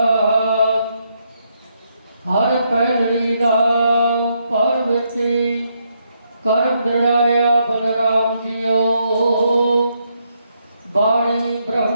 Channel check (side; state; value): both; inverted; correlation -0.77